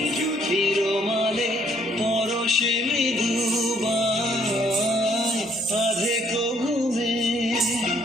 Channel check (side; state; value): both; normal; correlation 0.66